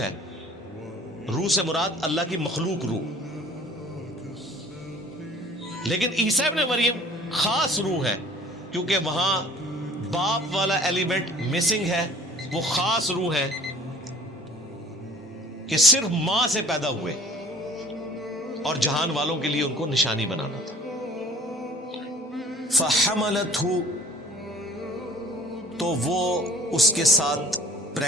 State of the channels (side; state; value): both; normal; correlation 0.50